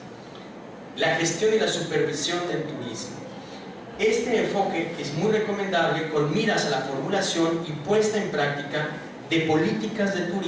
la gestión y la supervisión del turismo. Este enfoque es muy recomendable con miras a la formulación y puesta en práctica de políticas de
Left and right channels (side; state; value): both; identical; correlation 1.00